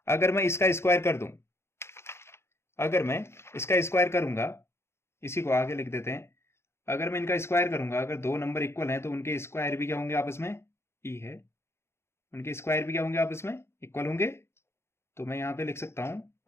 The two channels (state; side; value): late; right; 0.12 ms